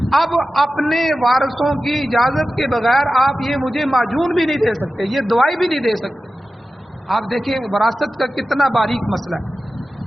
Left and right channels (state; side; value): normal; both; correlation 0.94